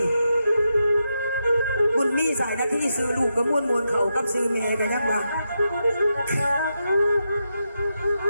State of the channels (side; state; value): both; inverted; correlation -0.85